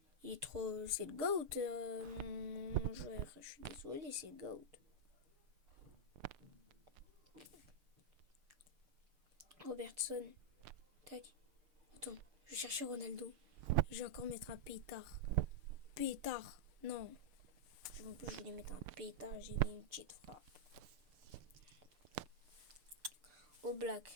il est trop... c'est le GOAT, mon joueur, je suis désolé, c'est le GOAT. Robertson, tac, attends, je vais chercher Ronaldo, je vais encore mettre un pétard, non, en plus je voulais mettre un pétard, j'ai mis une petite frappe. Au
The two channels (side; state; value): left; late; 6.7 ms